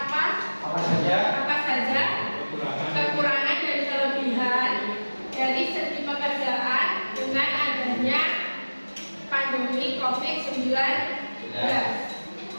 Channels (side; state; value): both; inverted; correlation -1.00